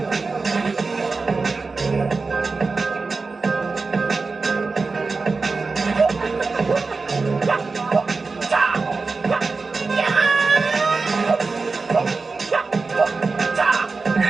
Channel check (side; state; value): left; quieter; 4.1 dB